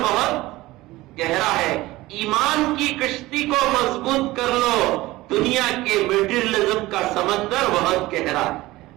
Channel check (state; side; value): quieter; left; 18.6 dB